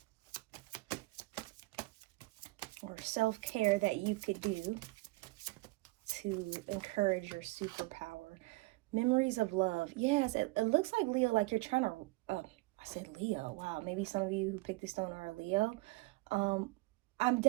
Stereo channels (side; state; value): left; quieter; 22.6 dB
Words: or self-care that you could do to encourage your superpower. Memories of love. Yes, it looks like Leo, like you're trying to, I said Leo. Wow, maybe some of you who picked this stone are a Leo. I'm